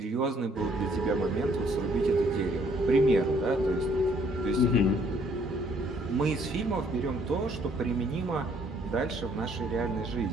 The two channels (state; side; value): normal; both; correlation 0.64